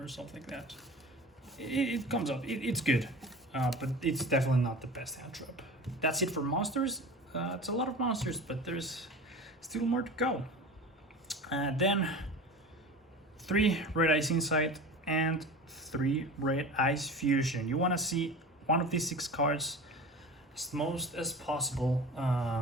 something like that. It comes up. It's good, but it's definitely not the best hand trap. That's it for monsters. It's a lot of monsters, but there's still more to go. Then 3 Red Ice Insight and 3 Red Ice Fusion. You want to see one of these 6 cards as most as possible.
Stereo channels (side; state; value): both; normal; correlation 0.35